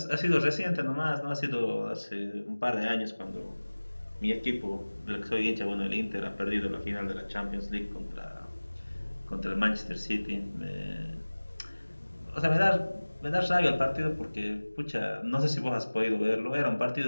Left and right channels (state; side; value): inverted; both; correlation -1.00